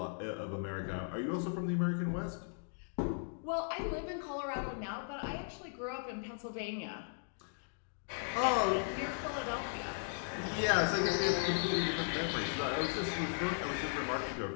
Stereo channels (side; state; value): right; silent; digital silence